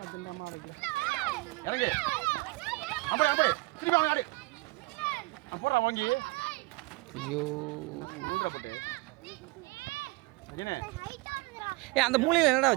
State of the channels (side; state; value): left; quieter; 23.5 dB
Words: இறங்கு அப்படி அப்படி திருப்பி அவன் ஆடு போடுறா வாங்கி ஐயோ ஊடுற போட்டு அஜினே ஏ அந்த மூலையில் என்னடா